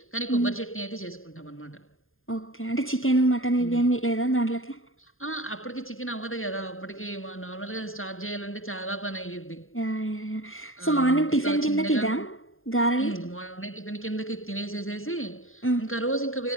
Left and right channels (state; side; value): late; right; 0.60 ms